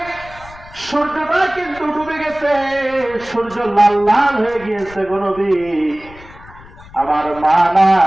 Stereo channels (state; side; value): noise; left; rumble, 20 dB below the sound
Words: সূর্যটা কিন্তু ডুবে গেছে, সূর্য লাল লাল হয়ে গিয়েছে গো নবী। আমার মা